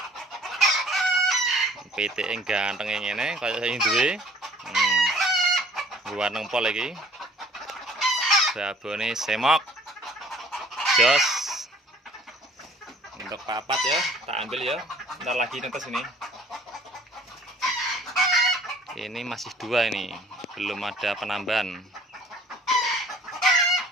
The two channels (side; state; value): both; normal; correlation 0.54